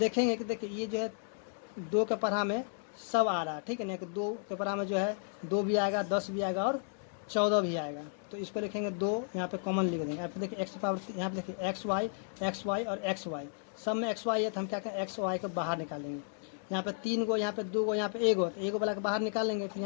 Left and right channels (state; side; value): silent; right; digital silence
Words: कि देखिए ये जो है 2 के पढ़ा में सब आ रहा है। ठीक है ना, कि 2 के पढ़ा में जो है 2 भी आएगा, 10 भी आएगा और 14 भी आएगा। तो इसको लिखेंगे 2, यहाँ पे कॉमन लिख देंगे। यहाँ पे देखिए एक्स पावर, यहाँ पे देखिए एक्स वाई और एक्स वाई, सब में एक्स वाई है, तो हम क्या करें एक्स वाई को बाहर निकालेंगे। यहाँ पे 3 गो, यहाँ पे 2 गो, यहाँ पे 1 गो, तो 1 गो वाला के बाहर निकालेंगे। फिर